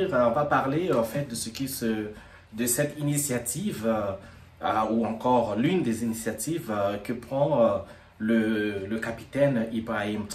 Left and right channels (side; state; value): both; identical; correlation 1.00